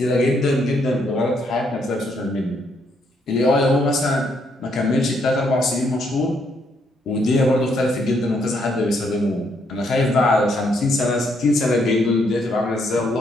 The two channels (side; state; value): both; normal; correlation 0.73